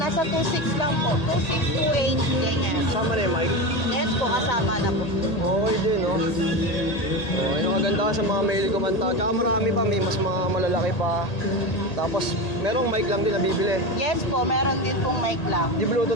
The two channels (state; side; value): late; right; 1.8 ms